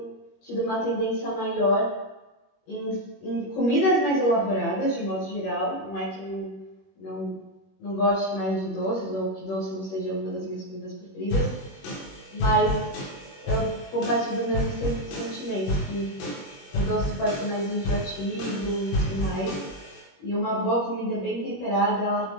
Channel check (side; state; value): right; late; 21 ms